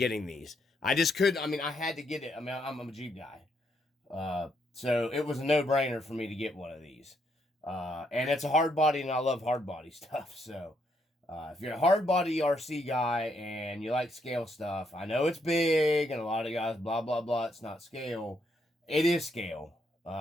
these. I just couldn't, I had to get it. I'm a Jeep guy. So it was a no-brainer for me to get one of these. And it's a hard body, and I love hard body stuff. So if you're a hard body RC guy and you like scale stuff, I know it's big, and a lot of guys, blah, blah, blah, it's not scale. It is scale.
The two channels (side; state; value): both; normal; correlation 0.75